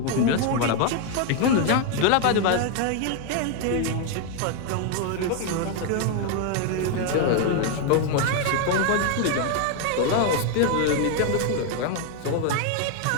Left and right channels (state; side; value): different; both; correlation 0.00